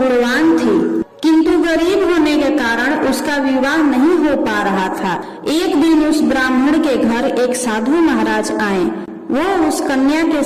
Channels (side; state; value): both; identical; correlation 1.00